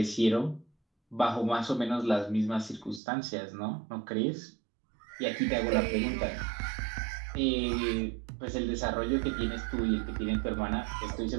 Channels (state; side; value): drops out; left; at 3.0 s